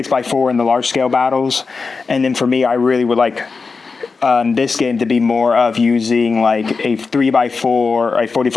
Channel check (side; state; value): right; quieter; 4.6 dB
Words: in the large-scale battles. And then for me, I really would like this game to be more of using like a 3x4, a